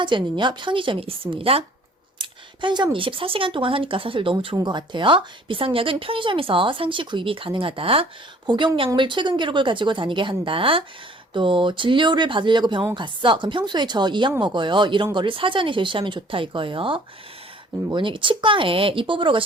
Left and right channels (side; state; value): both; normal; correlation 0.55